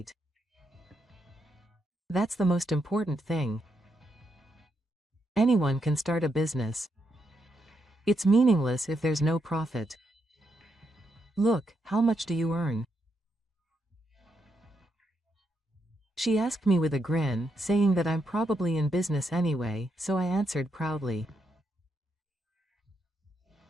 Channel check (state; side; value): normal; both; correlation 0.81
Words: That's the most important thing. Anyone can start a business. It's meaningless if there's no profit. Look, how much do you earn? She asked me with a grin, saying that I'm probably in business anyway, so I answered proudly.